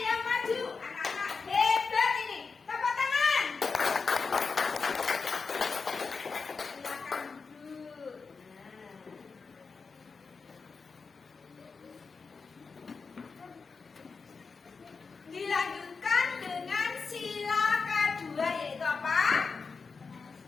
yang maju. Anak-anak hebat ini. Tepuk tangan.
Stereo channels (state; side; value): quieter; right; 4.8 dB